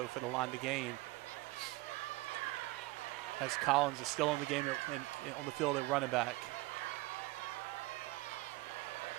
for the line to gain. As Collins is still in the game on the field at running back.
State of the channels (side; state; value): left; quieter; 21.1 dB